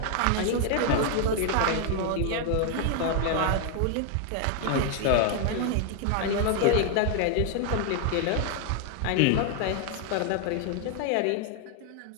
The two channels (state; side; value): different; both; correlation 0.00